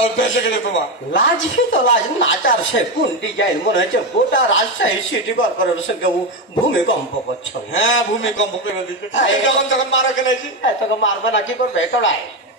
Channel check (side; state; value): both; normal; correlation 0.12